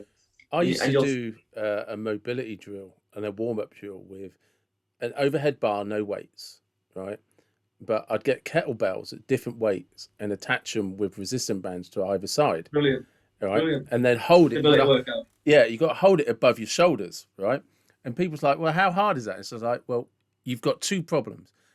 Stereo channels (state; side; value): identical; both; correlation 1.00